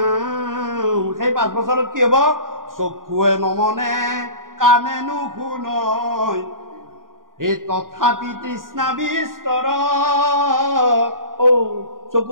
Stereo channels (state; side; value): late; left; 0.90 ms